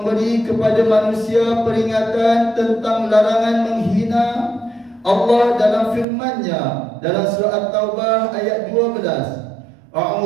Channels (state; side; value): drops out; left; at 6.1 s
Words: kepada manusia peringatan tentang larangan menghina Allah dalam firman-Nya dalam surah At-Taubah ayat 12.